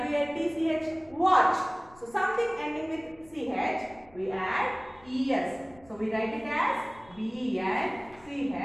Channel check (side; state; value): left; noise; rumble, 26 dB below the sound